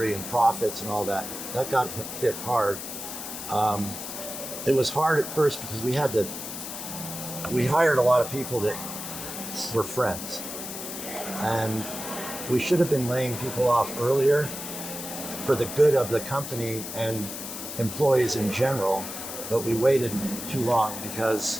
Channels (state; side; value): noise; left; hiss, 8 dB below the sound